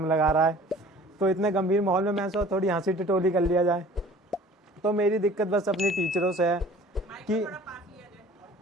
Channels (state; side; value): normal; both; correlation 0.48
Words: लगा रहा है। तो इतने गंभीर माहौल में मैं सोचा थोड़ी हंसी टिटोली कर लिया जाए। तो मेरी दिक्कत बस अपनी टीचरों से है कि